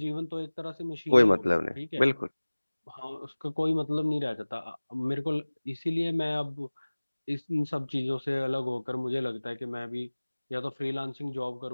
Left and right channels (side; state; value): both; inverted; correlation -1.00